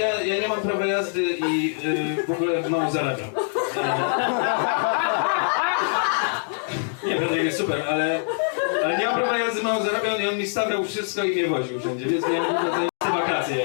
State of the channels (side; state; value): right; silent; digital silence